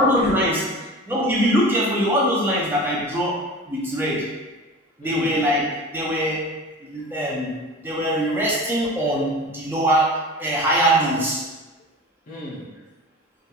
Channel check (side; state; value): both; normal; correlation 0.35